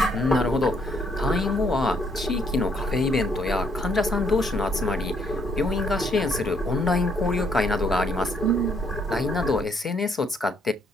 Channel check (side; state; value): both; normal; correlation 0.69